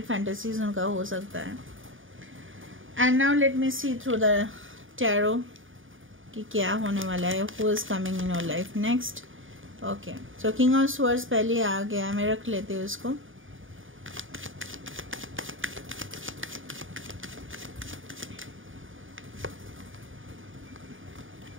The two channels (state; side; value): late; left; 0.58 ms